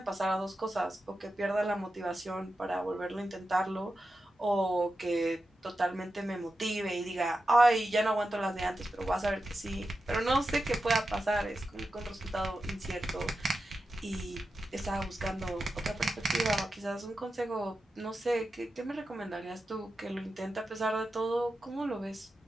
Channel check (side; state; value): both; normal; correlation 0.91